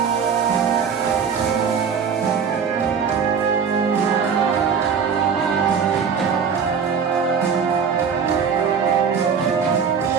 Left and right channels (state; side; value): quieter; left; 6.5 dB